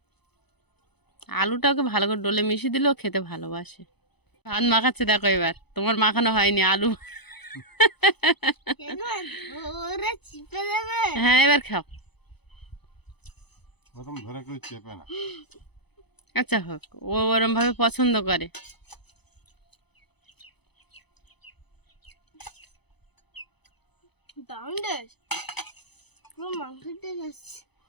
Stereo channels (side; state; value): right; late; 0.98 ms